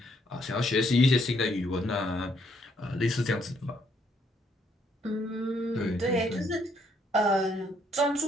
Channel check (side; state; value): both; normal; correlation 0.70